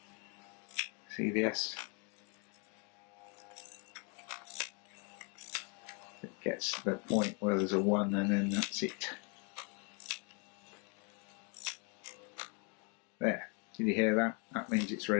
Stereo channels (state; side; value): quieter; right; 35.1 dB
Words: See this? It gets to the point where there's a 1 and then that's it. There. Did you hear that? That means it's